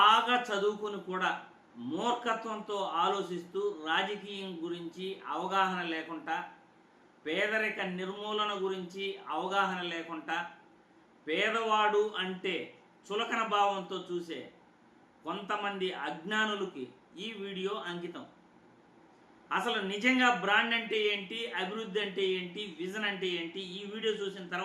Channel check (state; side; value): identical; both; correlation 1.00